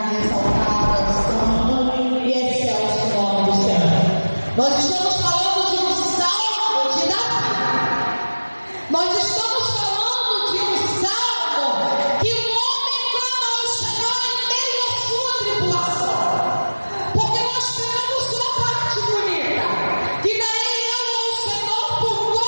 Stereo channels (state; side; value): inverted; both; correlation -1.00